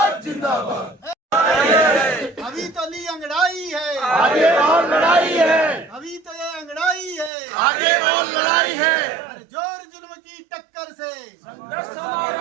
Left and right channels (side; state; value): left; drops out; at 7.3 s